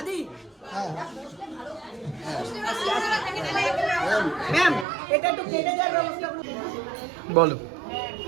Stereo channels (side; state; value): left; drops out; at 4.9 s